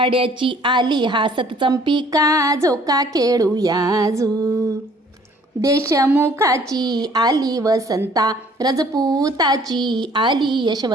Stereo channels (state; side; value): normal; both; correlation 0.57